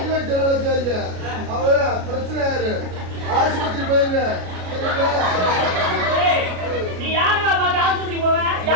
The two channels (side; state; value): left; late; 33 ms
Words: ஜெனரல் அவள பிரச்சனை ஆயிரு ஆஸ்பத்திரி போயிருங்க நீ யாரா பாக்க ஆஸ்பத்திரி போவ